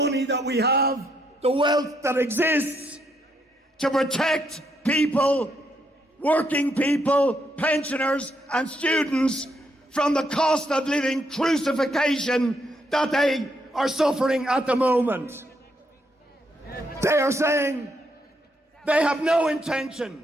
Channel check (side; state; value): both; normal; correlation 0.76